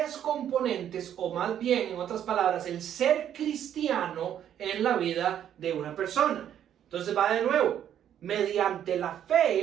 componentes, o más bien, en otras palabras, el ser cristiano en la vida de una persona. Entonces va de nuevo, mediante la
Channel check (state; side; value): quieter; left; 10.0 dB